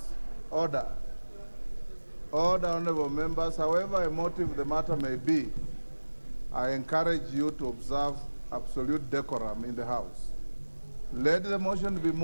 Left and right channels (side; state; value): both; inverted; correlation -1.00